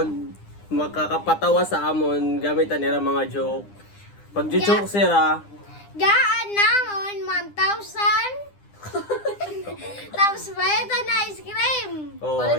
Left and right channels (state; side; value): late; right; 9.9 ms